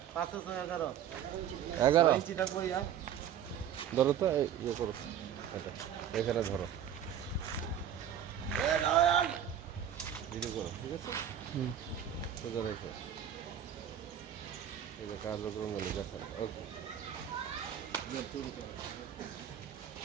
11 ইঞ্চি থাকবো ইয়া। ধরো তো ইয়ে করো, এটা এখানে ধরো, ভিডিও করো, ঠিক আছে? সোজা রেখো, এই যে কার্যক্রম গেলে দেখান। ওকে,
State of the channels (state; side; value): quieter; left; 9.5 dB